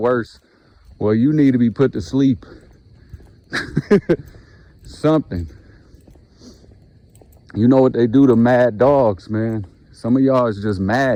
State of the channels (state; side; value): identical; both; correlation 1.00